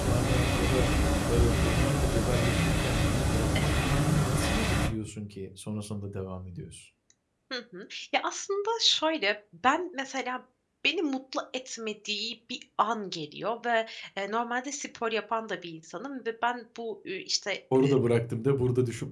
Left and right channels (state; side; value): identical; both; correlation 1.00